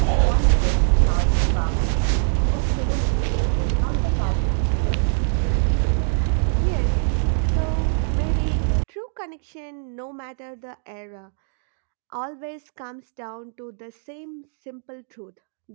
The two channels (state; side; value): silent; left; digital silence